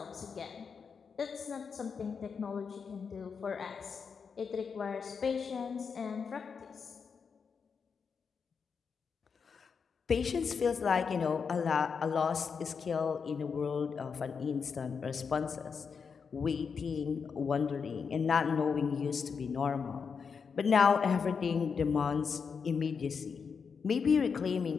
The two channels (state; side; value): quieter; right; 5.9 dB